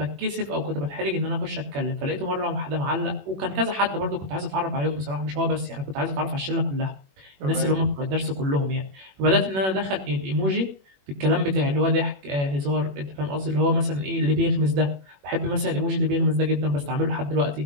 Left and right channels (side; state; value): left; late; 21 ms